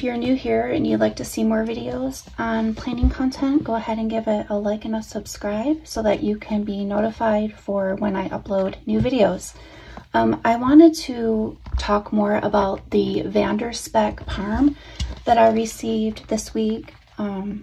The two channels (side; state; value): both; identical; correlation 1.00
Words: you're new here and you'd like to see more videos on planning content, go ahead and give it a like and a subscribe so that you can be notified for when I upload new videos. I wanted to talk more about the VanderSpek Parm that I received this week.